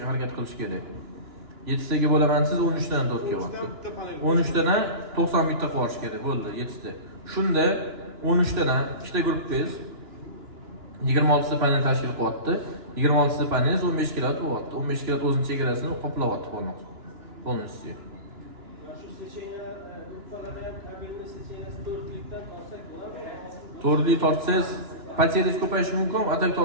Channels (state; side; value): late; left; 2.9 ms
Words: harakat qilish kerak. 7 taga bo'laman siz 13 dan 4 kilovatni. 13 dan 90 bitta qilish kerak bo'ldi 7 ta. Shunda 13 dan ikkita guruhbangiz 26 ta panel tashkil qilyapti. 26 ta panel 15 kilovat bo'lyapti. 15 kilovat o'zining chegarasini qoplayapti полностью. Shu seçeneğe yukarıdan kabelli seçeneğe 4'lükten alsak bular. To'rtlik tortsangiz pateringiz ko'payishi mumkin, atak